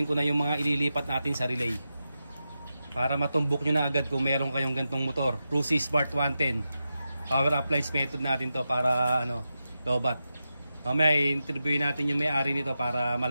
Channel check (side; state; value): both; inverted; correlation -0.90